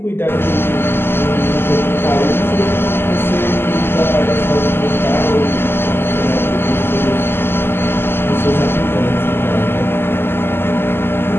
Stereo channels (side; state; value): right; late; 0.11 ms